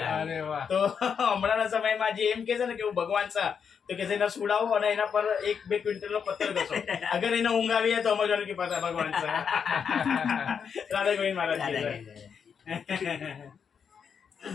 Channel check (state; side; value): quieter; right; 6.8 dB